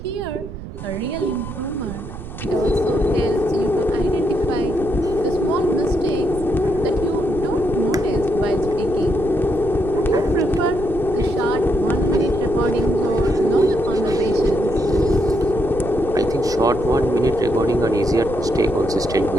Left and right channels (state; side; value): noise; right; rumble, 11 dB below the sound